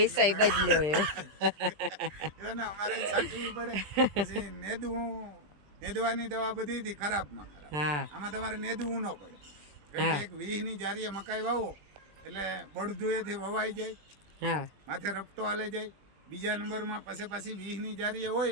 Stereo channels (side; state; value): left; late; 20 ms